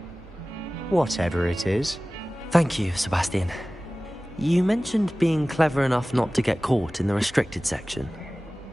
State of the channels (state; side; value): normal; both; correlation 0.97